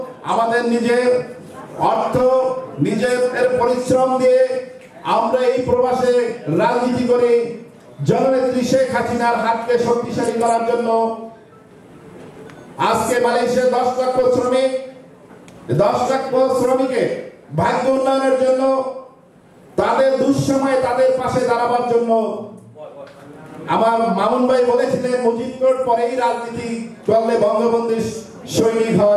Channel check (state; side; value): identical; both; correlation 1.00